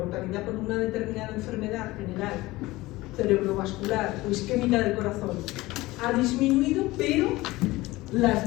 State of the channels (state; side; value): quieter; right; 19.5 dB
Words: por una determinada enfermedad general, cerebrovascular o isquémica del corazón, ha disminuido, pero las